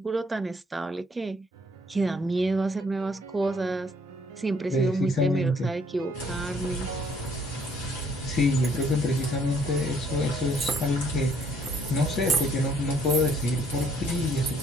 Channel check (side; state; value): both; normal; correlation 0.64